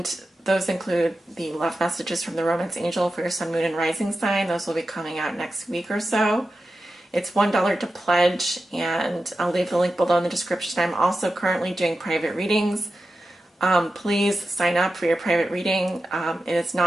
those include the love messages from the Romance Angel for your Sun, Moon, and Rising sign. Those will be coming out next week or so. It's $1 to pledge, and I'll leave the link below in the description. I'm also currently doing private readings. Please sign up for your private reading. It is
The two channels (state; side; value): normal; both; correlation 0.92